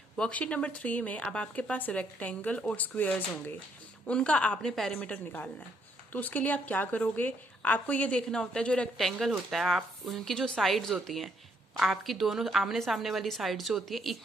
worksheet number 3 में अब आपके पास रेक्टेंगल और स्क्वेयर्स होंगे, उनका आपने पेरीमीटर निकालना है। तो उसके लिए आप क्या करोगे, आपको ये देखना होता है जो रेक्टेंगल होता है, आप उनकी जो साइड्स होती हैं, आपकी दोनों आमने सामने वाली साइड जो होती है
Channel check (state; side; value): normal; both; correlation 0.71